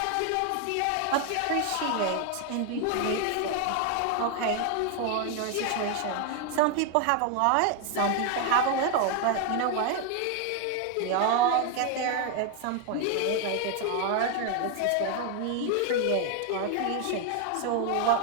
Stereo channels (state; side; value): different; both; correlation 0.00